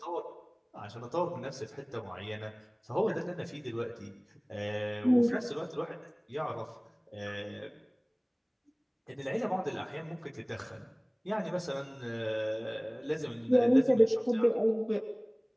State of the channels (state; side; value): identical; both; correlation 1.00